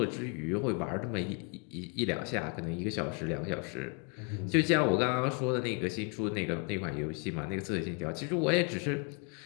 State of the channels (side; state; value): right; quieter; 35.6 dB